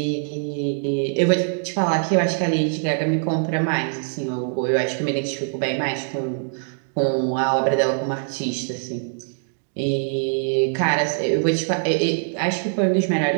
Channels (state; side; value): silent; left; digital silence